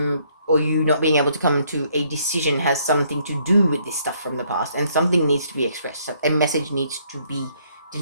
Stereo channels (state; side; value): inverted; both; correlation -0.68